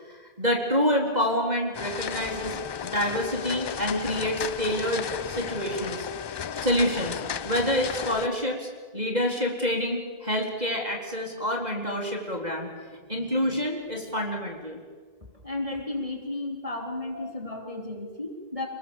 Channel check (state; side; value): late; left; 2.0 ms